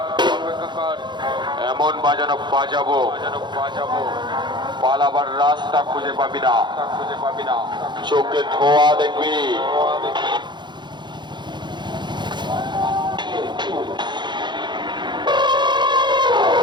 এমন বাজানো বাজাবো পালাবার রাস্তা খুঁজে পাবি না, চোখে ধোয়া দেখবি।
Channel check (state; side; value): late; left; 0.22 ms